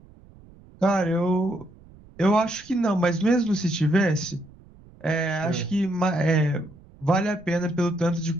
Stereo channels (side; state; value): right; noise; rumble, 24 dB below the sound